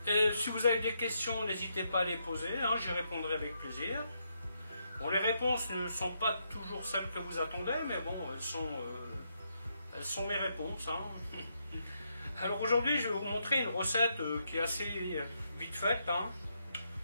Et si vous avez des questions, n'hésitez pas à les poser, j'y répondrai avec plaisir. Bon, les réponses ne sont pas toujours celles que vous attendez, mais bon, elles sont mes réponses. Alors aujourd'hui, je vais vous montrer une recette qui est assez vite faite.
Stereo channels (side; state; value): both; inverted; correlation -0.79